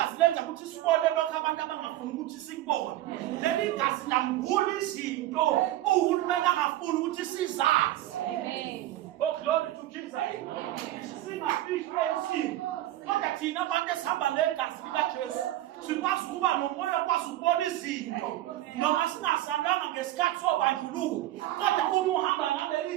lenza ukuthi sibone lokho abantu abangafuni ukuthi sikubone. Leli gazi lambula izinto uhulumeni angafuni ukuthi sizazi. Amen. Oh glory to Jesus. Singafihli esimo. Kodwa thina abantu esihamba negazi likaJesu sikwazi ukuba nomoya okwazi ukubona izinto noma singasanganga ngesikhathi sobandlululo. Kodwa uma uhamba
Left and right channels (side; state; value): left; quieter; 14.6 dB